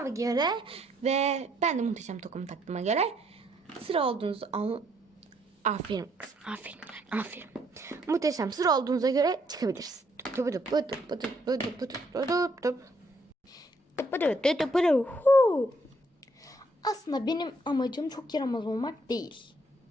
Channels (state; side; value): normal; both; correlation 0.69